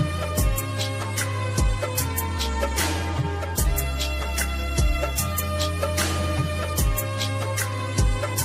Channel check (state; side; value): identical; both; correlation 1.00